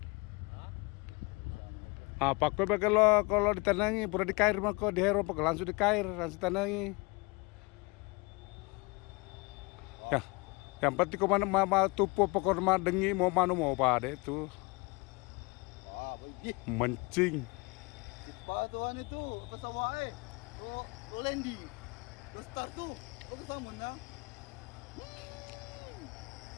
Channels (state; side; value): quieter; right; 27.4 dB